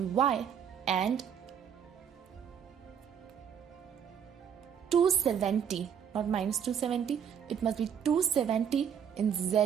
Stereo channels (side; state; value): left; quieter; 8.1 dB